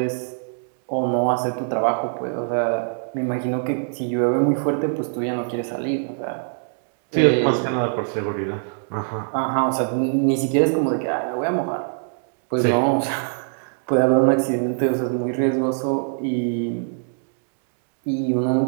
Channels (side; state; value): left; silent; digital silence